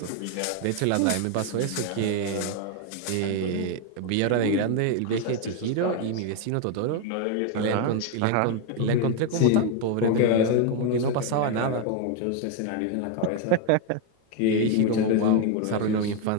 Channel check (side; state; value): both; different; correlation 0.01